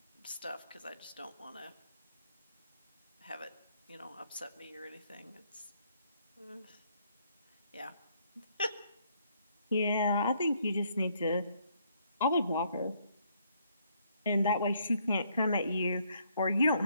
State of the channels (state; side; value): inverted; both; correlation -0.69